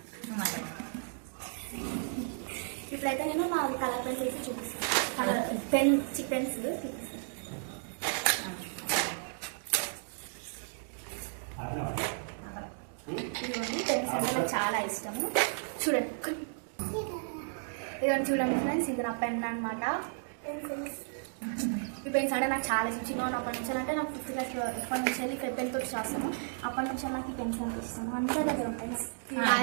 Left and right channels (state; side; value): silent; left; digital silence